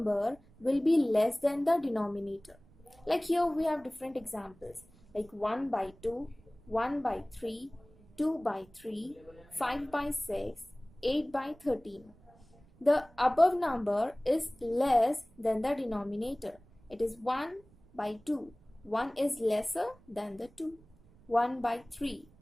will be less than the denominator. Like here we have different examples, like 1 by 2, 1 by 3, 2 by 3, 5 by 6, 8 by 13. The above number is less than the denominator. It is 1 by 2. 1 is lesser than the 2. 1 by 3.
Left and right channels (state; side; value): noise; right; rumble, 27 dB below the sound